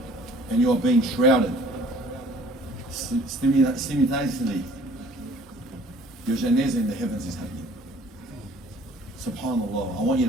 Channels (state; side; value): normal; both; correlation 0.54